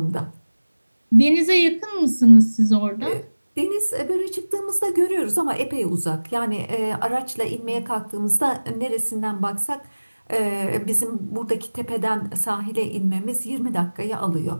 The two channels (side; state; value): both; inverted; correlation -1.00